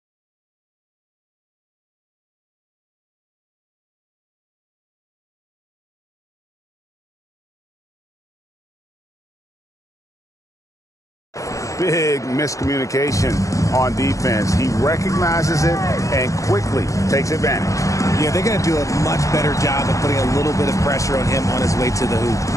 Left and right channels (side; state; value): right; late; 0.16 ms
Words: Big miscommunication on defense. He recognizes it and quickly takes advantage. Yeah, they're going to do a much better job of putting a little bit of pressure on him on his way to the